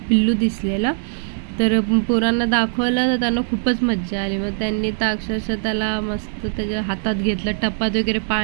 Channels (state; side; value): silent; left; digital silence